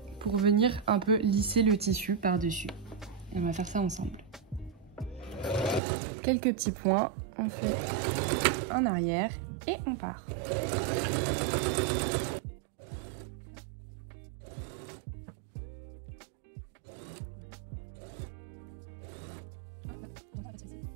pour venir un peu lisser le tissu par-dessus. Et on va faire ça ensemble. Quelques petits points, on fait en arrière et on part.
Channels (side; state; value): left; drops out; at 5.8 s